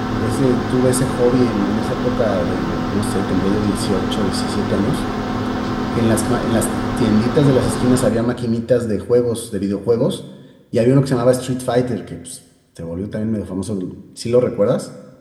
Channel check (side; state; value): both; identical; correlation 1.00